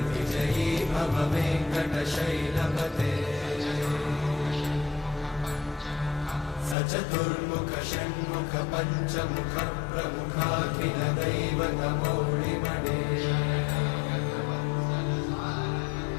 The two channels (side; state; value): right; drops out; at 6.8 s